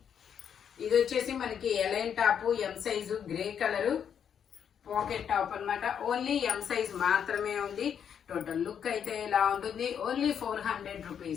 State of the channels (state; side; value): quieter; right; 8.1 dB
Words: ఇది వచ్చేసి మనకి A line top, M size, grey colour pocket top అన్నమాట. ఓన్లీ ఎం సైజ్ మాత్రమే ఉంది. టోటల్ లుక్ అయితే ఇలా ఉంటుంది. ఓన్లీ 400